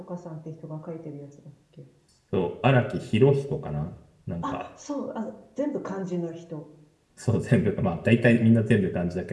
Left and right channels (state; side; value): identical; both; correlation 1.00